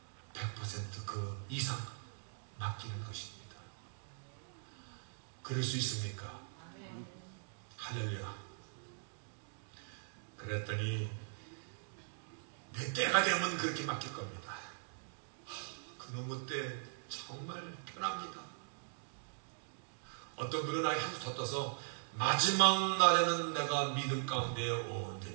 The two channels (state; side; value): silent; left; digital silence